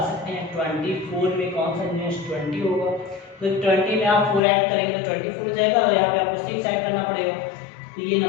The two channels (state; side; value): drops out; right; at 4.4 s